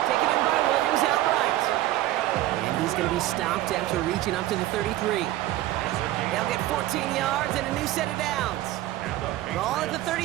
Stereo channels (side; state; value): left; quieter; 15.3 dB